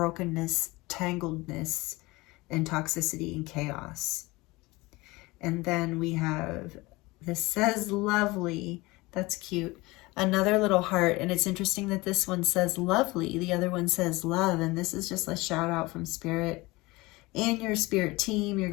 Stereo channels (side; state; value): right; quieter; 22.2 dB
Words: tangledness and toxicity and chaos. And then we have, this says lovely. That's cute. Another little heart. And it's interesting that this one says lovely. The other one says love. And this is just a shout out from Spirit and your spirit team, your